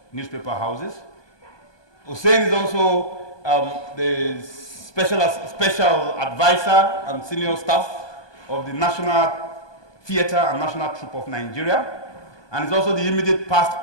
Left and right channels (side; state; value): right; late; 1.2 ms